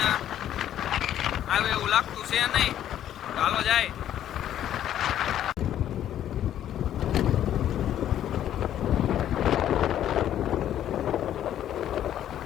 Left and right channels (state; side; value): quieter; right; 11.1 dB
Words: આવે એવું લાગતું છે નહીં. ચાલો જાય.